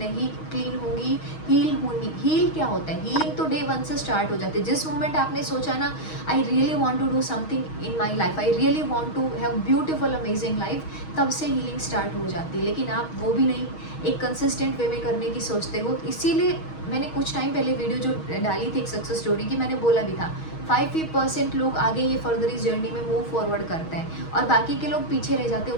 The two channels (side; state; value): right; late; 6.3 ms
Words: क्लीन होंगी, हील होंगी। हील क्या होता है? हीलिंग तो डे 1 से स्टार्ट हो जाती है। जिस मोमेंट आपने सोचा ना, I really want to do something in my life, I really want to have beautiful amazing life, तब से हीलिंग स्टार्ट हो जाती है। लेकिन आप वो भी नहीं एक कंसिस्टेंट वे में करने की सोचते हो। इसीलिए मैंने कुछ टाइम पहले वीडियो जो डाली थी एक सक्सेस स्टोरी की, मैंने बोला भी था 5% लोग आगे ये फर्दर इस जर्नी में मूव फॉरवर्ड करते हैं और बाकी के लोग पीछे रह जाते हैं।